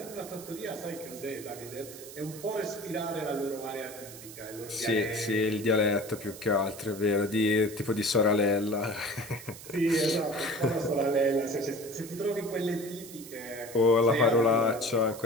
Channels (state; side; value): noise; right; hiss, 15 dB below the sound